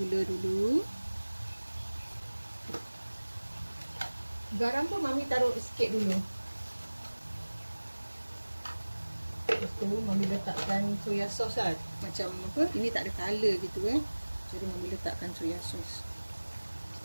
dulu. Garam pun Mami taruh sikit dulu. Lepas tu Mami letakkan soya sauce lah. Macam apa, ini tak ada color gitu Jadi Mami letakkan soya sauce.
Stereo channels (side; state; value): both; inverted; correlation -1.00